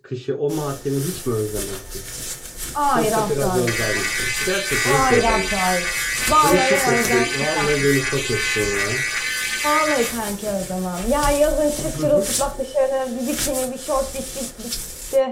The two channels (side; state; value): both; identical; correlation 1.00